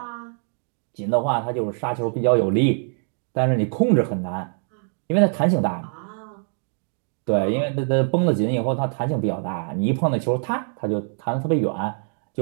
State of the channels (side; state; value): left; silent; 59 dB below the other